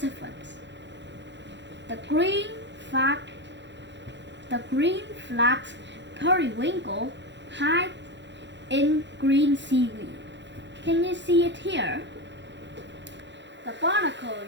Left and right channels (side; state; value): left; late; 0.52 ms